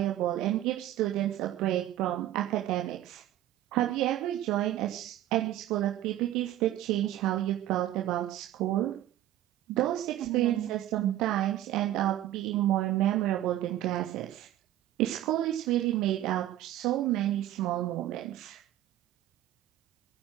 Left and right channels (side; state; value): left; quieter; 13.4 dB